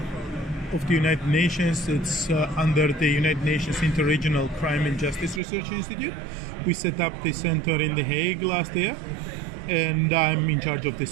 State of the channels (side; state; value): left; drops out; at 5.4 s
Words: of the United Nations. It's under the United Nations Interregional Crime and Justice Research Institute. We set up the center in The Hague last year, and I'm in charge of the